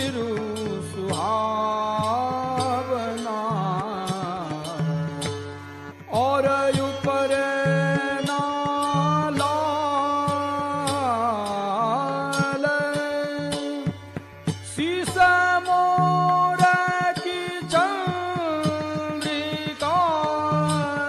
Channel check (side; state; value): both; identical; correlation 1.00